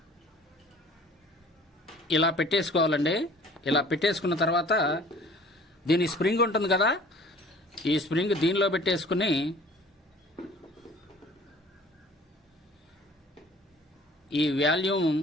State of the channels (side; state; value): both; normal; correlation 0.49